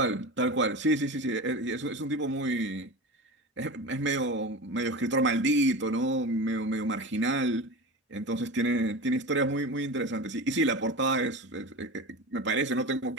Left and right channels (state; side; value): normal; both; correlation 0.28